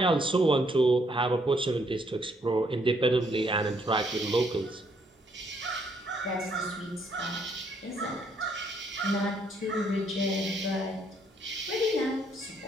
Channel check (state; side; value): normal; both; correlation 0.70